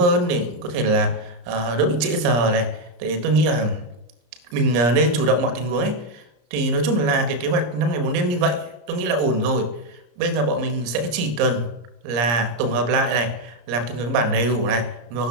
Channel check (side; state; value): left; late; 34 ms